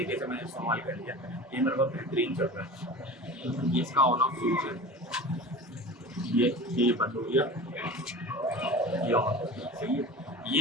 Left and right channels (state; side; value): normal; both; correlation 0.35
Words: से मैंने इस्तेमाल कर लिया। ये मेरे पास बेहतरीन चल रहा है। ये इसका ऑन ऑफ स्विच है, ये बंद हो गया, ये ऑन हो गया, सही है।